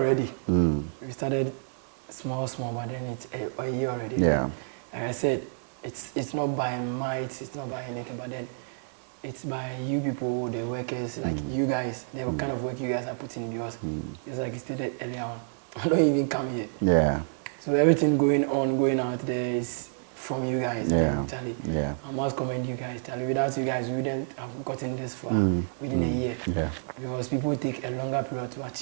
We started small, but then it's a year already. Yeah. Like I said, it's not by might, it's not by anything, but then it's by you people, the workers, like you guys, the kind of work you guys are putting in, because it's like you stated earlier on, I don't even come here. Yeah. So everything going out there is from you guys. And then, Charlie, I must commend you guys, Charlie. Without you guys, we wouldn't have gotten this far within a year. Yeah. Because people take a longer period to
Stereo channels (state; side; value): silent; left; digital silence